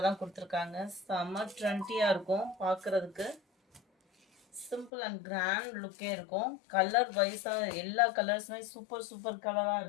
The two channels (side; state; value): right; drops out; at 4.9 s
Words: தான் கொடுத்துருக்காங்க. செம்ம ட்ரெண்டியாக இருக்கும் பார்க்குறதுக்கு. சிம்பிள் அண்ட் கிராண்ட் லுக்கே இருக்கும். கலர் வைஸாக எல்லா கலர்ஸுமே சூப்பர் சூப்பர் கலராக